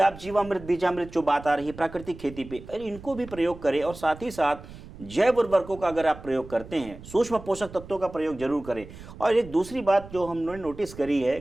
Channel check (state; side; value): noise; right; rumble, 16 dB below the sound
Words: जीवामृत, बीजामृत जो बात आ रही है प्राकृतिक खेती पे, अरे इनको भी प्रयोग करें। और साथ ही साथ जैव उर्वरकों का अगर आप प्रयोग करते हैं, सूक्ष्म पोषक तत्वों का प्रयोग जरूर करें। और एक दूसरी बात जो हमने नोटिस करी है